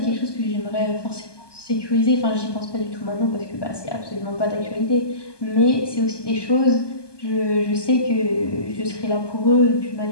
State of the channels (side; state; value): right; late; 1.2 ms